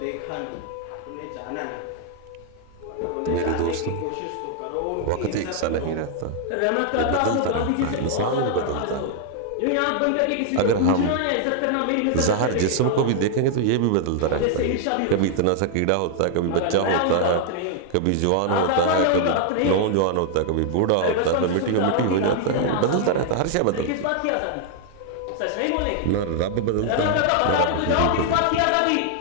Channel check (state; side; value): different; both; correlation 0.00